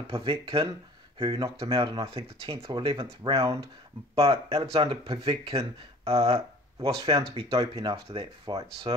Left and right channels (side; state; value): both; normal; correlation 0.48